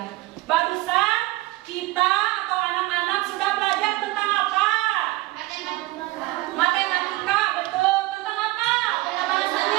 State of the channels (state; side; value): quieter; left; 19.2 dB